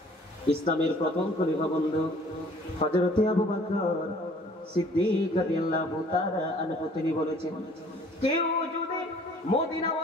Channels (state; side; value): normal; both; correlation 0.54